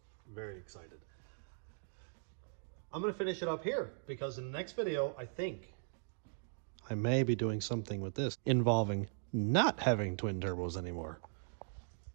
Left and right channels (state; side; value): silent; left; digital silence